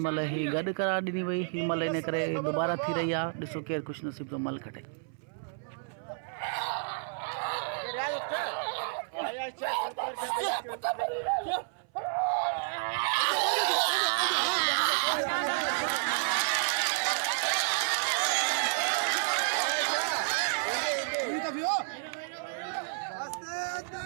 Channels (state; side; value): silent; left; 57 dB below the other